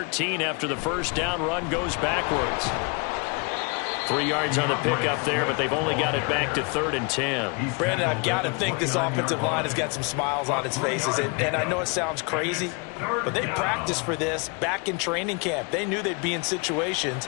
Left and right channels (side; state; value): right; quieter; 32.8 dB